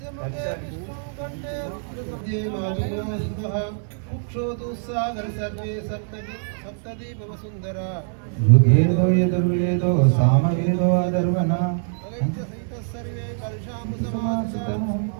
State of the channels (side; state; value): left; silent; 63 dB below the other